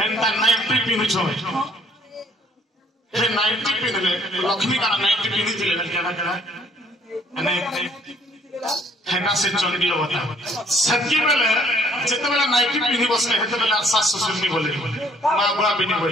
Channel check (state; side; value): normal; both; correlation 0.61